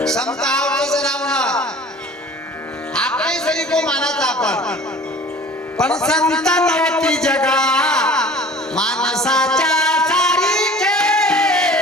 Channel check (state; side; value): normal; both; correlation 0.45